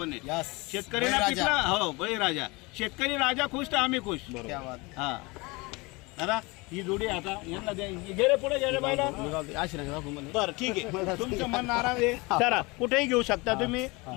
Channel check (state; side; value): quieter; right; 25.4 dB